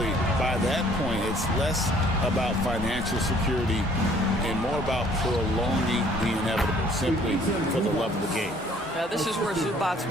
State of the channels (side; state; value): both; normal; correlation 0.58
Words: by that point, it's less about financial security and more about prolonging the inevitable, simply for the love of the game. Now, this is where Zubac's